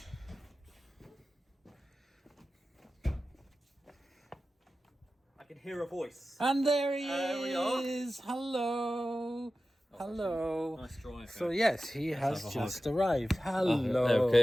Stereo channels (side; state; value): both; normal; correlation 0.94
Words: I can hear a voice. And there he we are. is. Hello. Hello. Nice drive. So yes, he has just arrived. Hello.